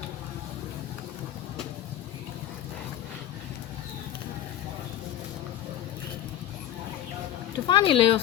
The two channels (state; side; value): quieter; right; 12.1 dB